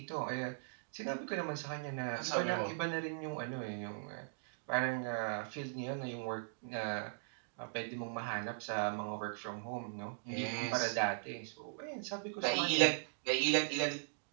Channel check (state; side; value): silent; left; digital silence